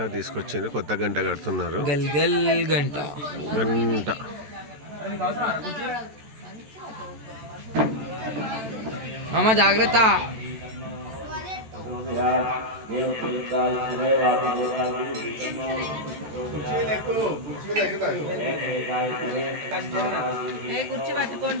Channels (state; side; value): late; left; 14 ms